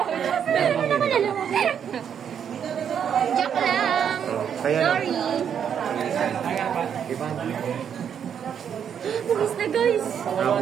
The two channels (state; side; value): quieter; left; 8.2 dB